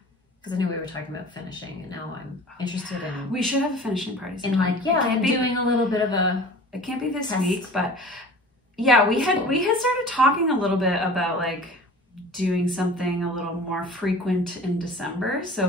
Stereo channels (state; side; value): normal; both; correlation 0.42